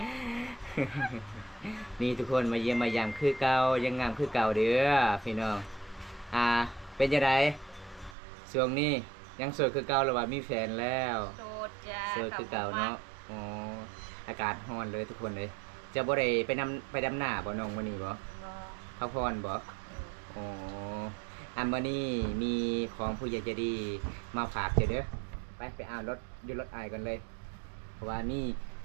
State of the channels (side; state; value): left; drops out; at 8.2 s